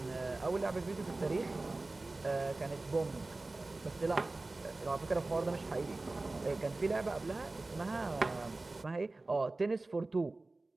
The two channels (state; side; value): quieter; left; 3.1 dB